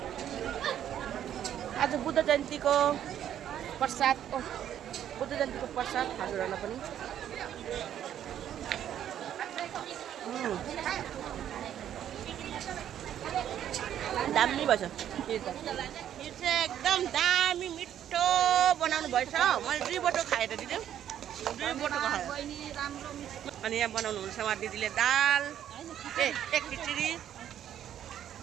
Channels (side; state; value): left; quieter; 10.5 dB